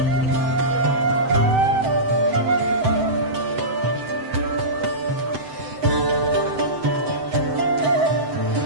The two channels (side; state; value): left; late; 7.8 ms